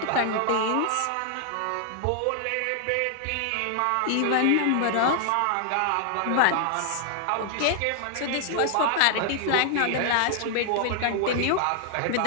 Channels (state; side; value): different; both; correlation 0.00